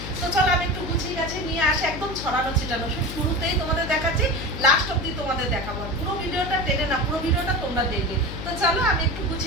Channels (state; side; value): noise; left; hum, 8 dB below the sound